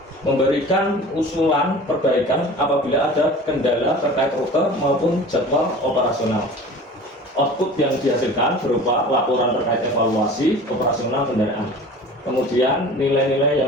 Memberikan usulan perbaikan apabila ada kendala terkait rute maupun jadwal operasional. Output yang dihasilkan berupa laporan terkait evaluasi operasional kendaraan. Kemudian nilai-nilai yang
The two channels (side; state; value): both; normal; correlation 0.40